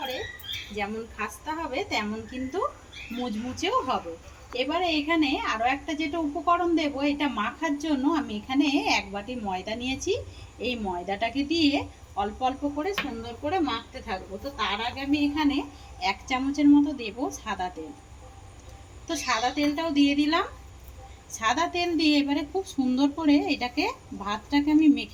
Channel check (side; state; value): both; identical; correlation 1.00